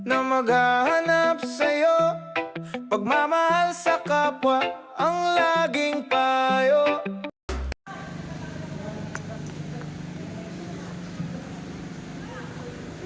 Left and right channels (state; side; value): identical; both; correlation 1.00